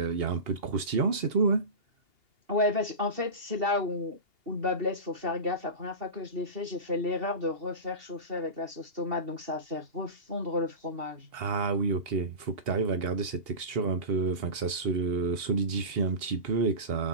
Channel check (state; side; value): late; left; 2.8 ms